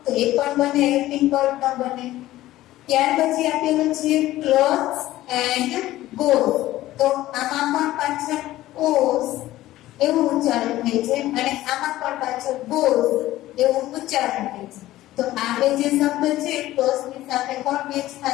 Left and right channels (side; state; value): right; quieter; 15.5 dB